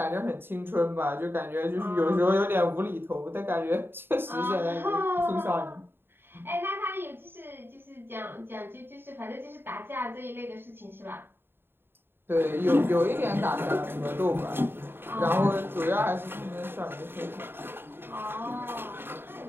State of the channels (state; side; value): late; left; 0.11 ms